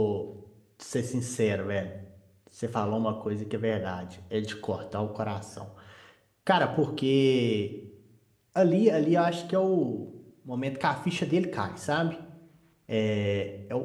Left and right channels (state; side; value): identical; both; correlation 1.00